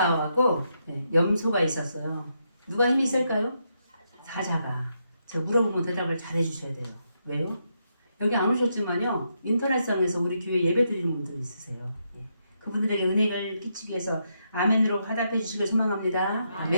염소가 있었어요. 누가 힘이 셀까요? 사자가. 제가 물어보면 대답을 잘 해주셔야 돼요. 왜요? 여기 안 오셨지만요. 인터넷상에서 우리 교회 예배 드리는 분들 있으세요. 그분들에게 은혜를 끼치기 위해서 아멘으로 화답해 주시길 소망합니다.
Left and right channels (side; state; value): both; inverted; correlation -0.80